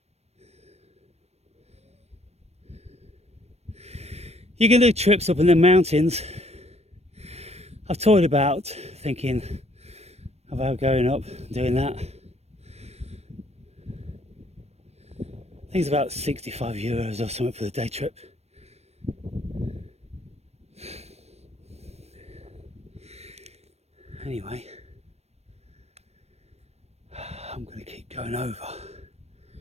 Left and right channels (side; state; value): left; late; 0.31 ms